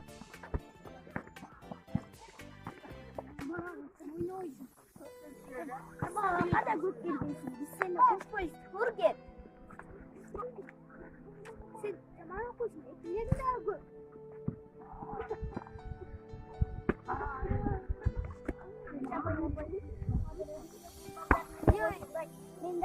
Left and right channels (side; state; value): both; identical; correlation 1.00